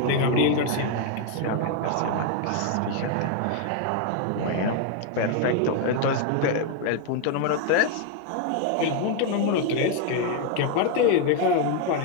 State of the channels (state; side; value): different; both; correlation 0.00